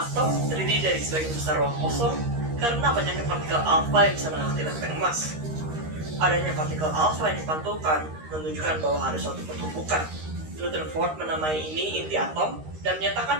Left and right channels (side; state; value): left; late; 13 ms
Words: terdiri dari sebagian besar ruang kosong karena banyaknya partikel alfa yang bisa melewati lempeng emas. Adanya partikel alfa yang dipantulkan menunjukkan bahwa ada suatu pertumbukan. Rutherford menamai ini inti atom dan